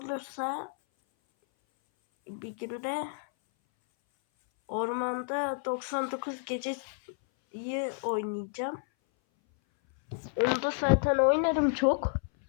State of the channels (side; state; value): right; silent; 57 dB below the other